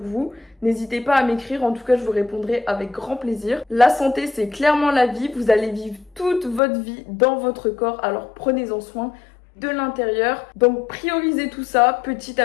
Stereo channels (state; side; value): drops out; right; at 6.6 s